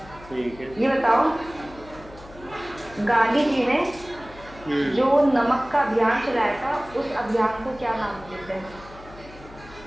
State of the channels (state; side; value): noise; left; hum, 19 dB below the sound